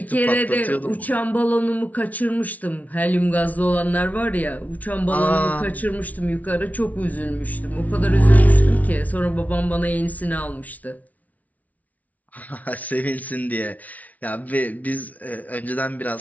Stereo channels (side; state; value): right; late; 0.072 ms